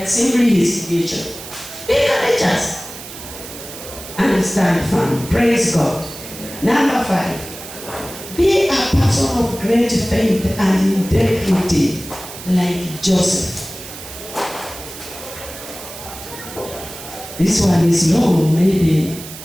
are simply his creation. Be courageous and stand firm. Praise God. Number 5. Be a person of great faith and integrity like Joseph. This one is long, maybe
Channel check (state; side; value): noise; right; hiss, 13 dB below the sound